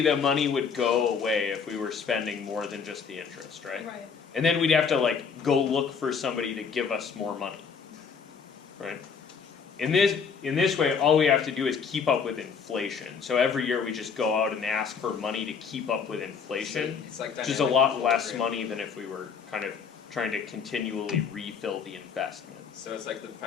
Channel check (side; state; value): right; quieter; 6.1 dB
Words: the money would go away if we were spending more than just the interest, right? Right. And then we'd have to like go look for somebody to give us more money. Right? In this way, all we have to do is keep up with inflation. So every year we just go out and ask for money to keep up with inflation, It's like which is a dynamic lot less equilibrium. money than if we were kind of trying to continually refill the investment. So it's like the